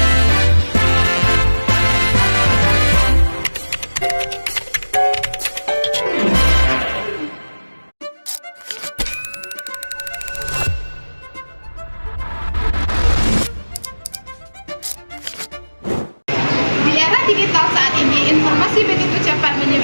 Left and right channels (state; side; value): inverted; both; correlation -1.00